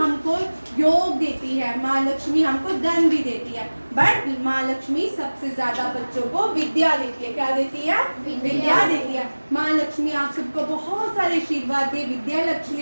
योग देती है, माँ लक्ष्मी हमको धन भी देती है, बट माँ लक्ष्मी सबसे ज्यादा बच्चों को विद्या देती है। क्या देती है? विद्या देती है। माँ लक्ष्मी आप सबको बहुत सारे आशीर्वाद दे विद्या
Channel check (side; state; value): both; inverted; correlation -1.00